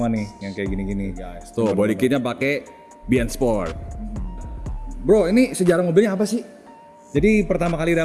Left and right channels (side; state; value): both; identical; correlation 1.00